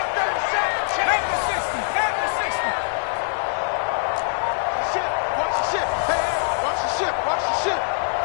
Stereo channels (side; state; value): right; silent; digital silence